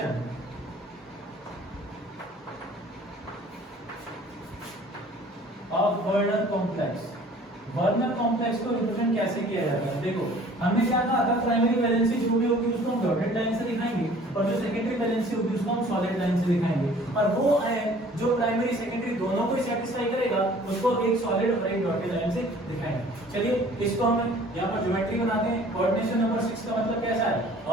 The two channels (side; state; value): both; normal; correlation 0.51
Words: of Werner complex, Werner complex को रिप्रेजेंट कैसे किया जाता है, देखो हमने क्या कहा था, प्राइमरी वैलेंसी जो भी होगी उसको हम डॉटेड लाइन से दिखाएंगे और जो सेकेंडरी वैलेंसी होगी उसको हम सॉलिड लाइन से दिखाएंगे, और वो जो प्राइमरी सेकेंडरी दोनों को सेटिस्फाई करेगा उसको एक सॉलिड और एक डॉटेड लाइन से दिखाएंगे। चलिए इसको हम यहाँ पर ज्योमेट्री बनाते हैं। कोऑर्डिनेशन नंबर 6 का मतलब कैसा है,